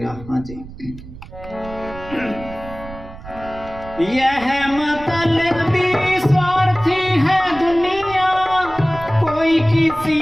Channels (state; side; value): noise; right; rumble, 15 dB below the sound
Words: हाँ जी। यह मतलबी स्वार्थी है दुनिया, कोई